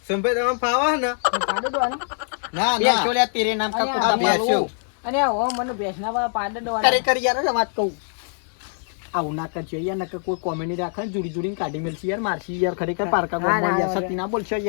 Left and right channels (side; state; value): right; silent; 63 dB below the other